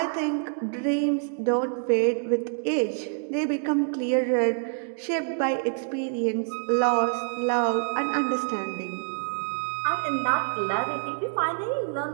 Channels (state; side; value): silent; left; 60 dB below the other